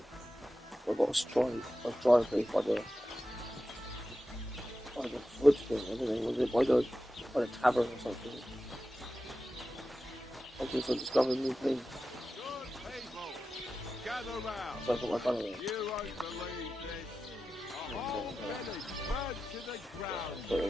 I've got a dry place by the wood thing, I don't know, was it by the tavern or something? Okay, so discovering new things. So I got my gun away.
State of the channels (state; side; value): normal; both; correlation 0.92